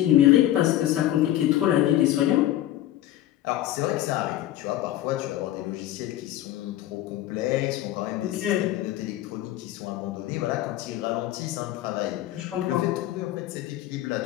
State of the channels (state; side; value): quieter; right; 13.7 dB